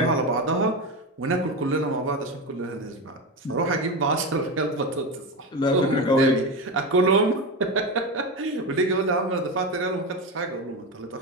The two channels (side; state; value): both; normal; correlation 0.18